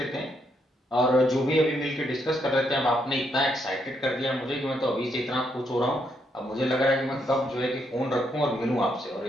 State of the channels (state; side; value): normal; both; correlation 0.76